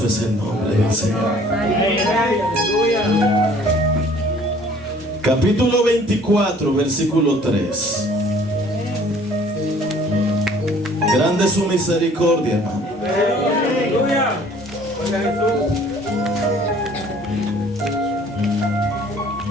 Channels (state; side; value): normal; both; correlation 0.54